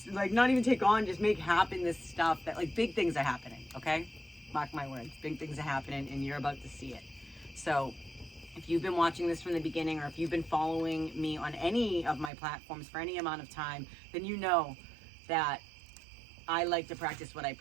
like not even take on, just make happen this stuff that like big things are happening, okay? Mark my words, big things are happening and you're about to see it. So if you've been watching this from the beginning, or if you've been following me on any of my platforms for any amount of time, then you know that I like to practice what I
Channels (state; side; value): drops out; left; at 12.3 s